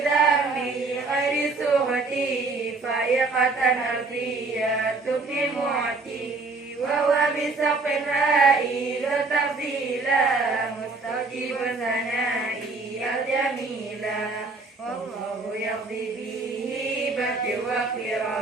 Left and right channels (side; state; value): left; quieter; 3.7 dB